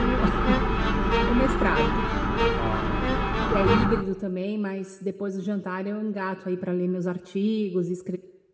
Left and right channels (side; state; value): both; identical; correlation 1.00